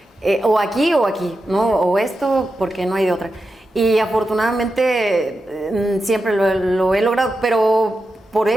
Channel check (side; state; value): both; normal; correlation 0.90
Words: o aquí, ¿no? O esto, porque no hay de otra. Y afortunadamente siempre lo he logrado, pero por